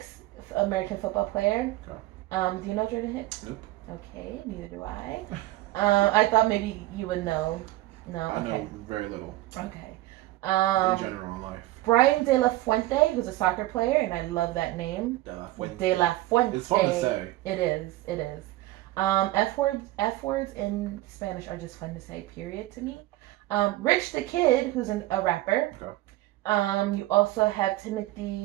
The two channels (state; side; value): quieter; left; 17.1 dB